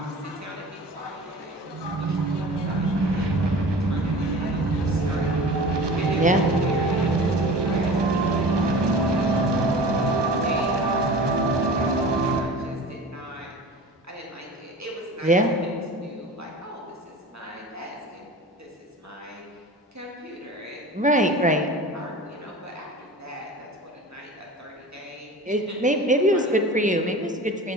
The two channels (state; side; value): normal; both; correlation 0.37